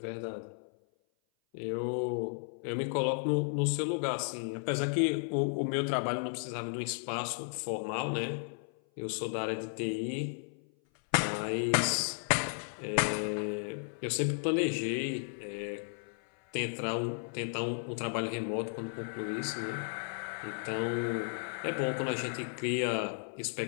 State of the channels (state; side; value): silent; right; 55 dB below the other